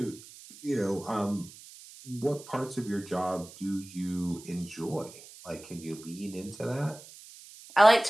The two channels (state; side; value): noise; right; hiss, 18 dB below the sound